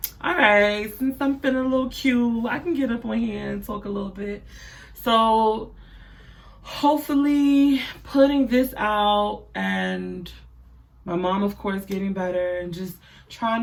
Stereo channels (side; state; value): both; identical; correlation 1.00